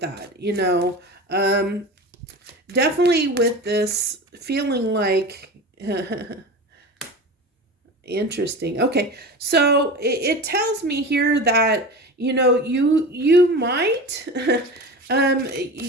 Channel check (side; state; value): both; normal; correlation 0.30